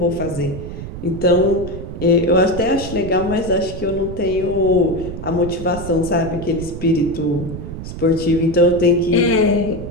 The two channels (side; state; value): right; noise; rumble, 9 dB below the sound